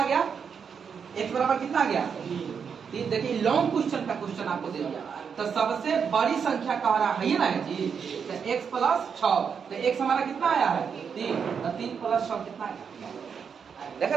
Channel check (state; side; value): quieter; left; 6.6 dB